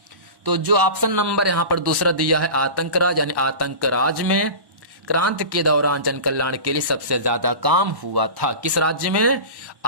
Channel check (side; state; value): left; late; 1.1 ms